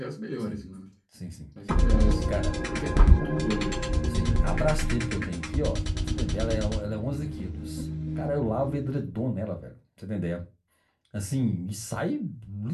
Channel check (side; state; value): both; identical; correlation 1.00